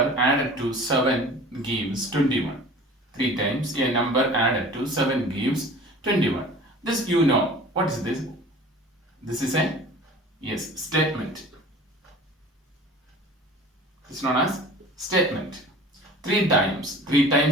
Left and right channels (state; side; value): normal; both; correlation 0.42